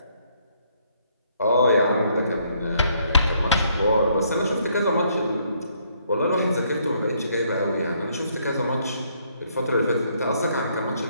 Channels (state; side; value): inverted; both; correlation -0.69